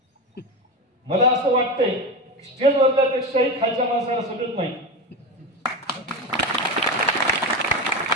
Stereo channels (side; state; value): both; normal; correlation 0.20